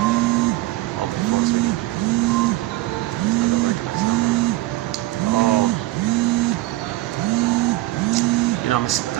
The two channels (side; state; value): left; quieter; 17.6 dB